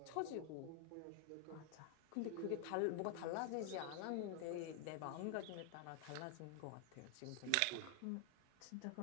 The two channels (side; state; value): both; different; correlation 0.00